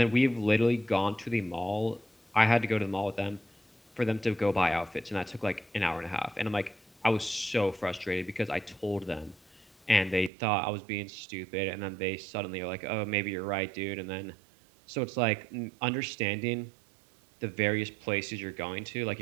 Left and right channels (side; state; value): left; drops out; at 10.3 s